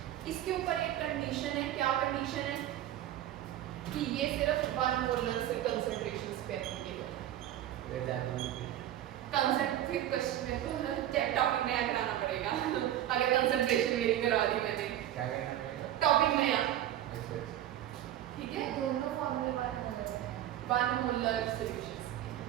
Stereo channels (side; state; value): left; quieter; 12.4 dB